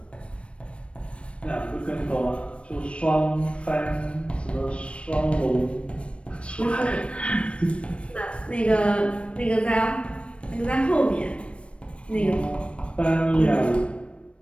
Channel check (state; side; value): late; right; 0.060 ms